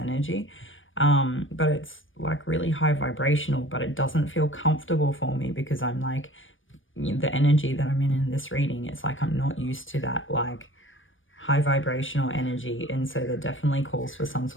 but it's like really high vibrational, but it doesn't feel comfortable for me because I'm like, the energy that I'm in this reading, it's like I'm not used to that like high vibrational energy, and so there definitely calls for some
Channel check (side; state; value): right; late; 0.57 ms